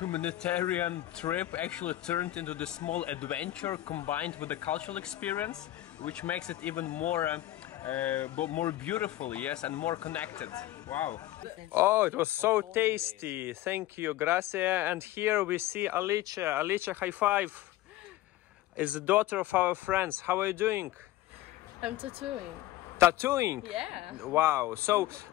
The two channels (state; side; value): quieter; right; 15.3 dB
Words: trip actually turned into this small adventure combined with a cultural experience, which makes it even more beautiful, yes, and more connected. Wow. Oh, it was so tasty. Thank you, grazie. And here we see Alice. Alice, high five. is the daughter of our friends. How are you doing? I'm tattooing. Tattooing? Yeah. Wow. So,